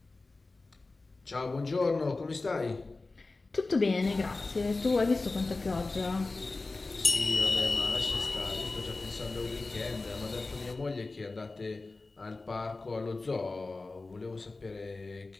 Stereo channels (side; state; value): right; quieter; 3.4 dB